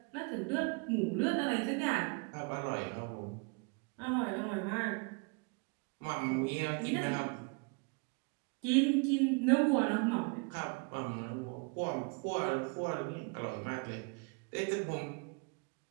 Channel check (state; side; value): quieter; left; 33.6 dB